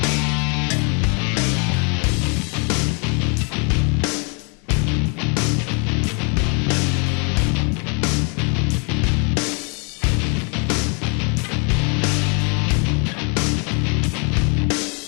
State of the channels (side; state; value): right; quieter; 36.5 dB